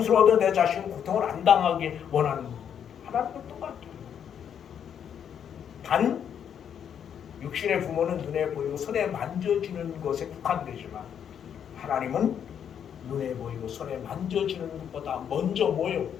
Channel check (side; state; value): right; quieter; 8.5 dB